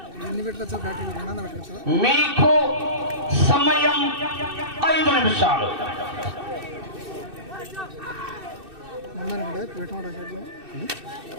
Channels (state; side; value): late; left; 2.6 ms